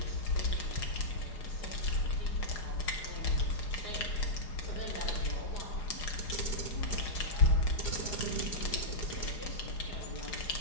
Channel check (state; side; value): late; right; 4.9 ms